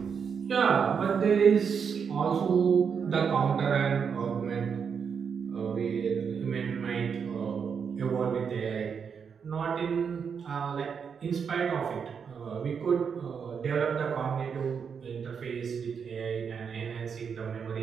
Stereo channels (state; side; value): quieter; left; 6.6 dB